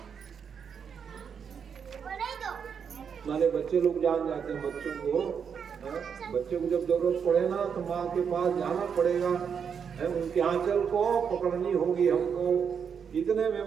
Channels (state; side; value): quieter; left; 7.0 dB